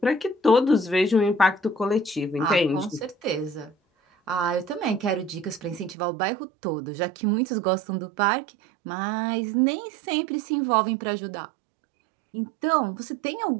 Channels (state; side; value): drops out; left; at 6.0 s